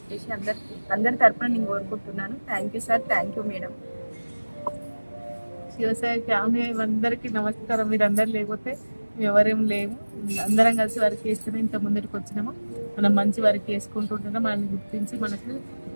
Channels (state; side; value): inverted; both; correlation -1.00